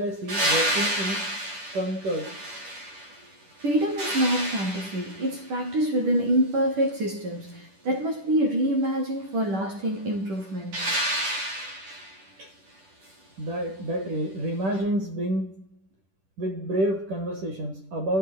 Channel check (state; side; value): late; left; 10 ms